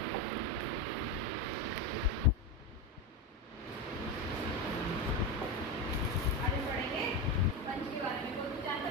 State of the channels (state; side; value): normal; both; correlation 0.16